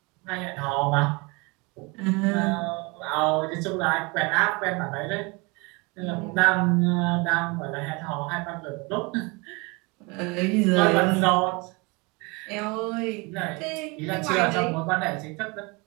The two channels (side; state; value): left; quieter; 27.7 dB